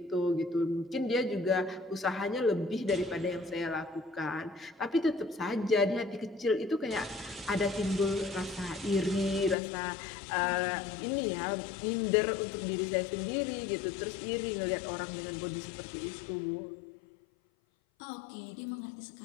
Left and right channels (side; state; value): right; drops out; at 9.6 s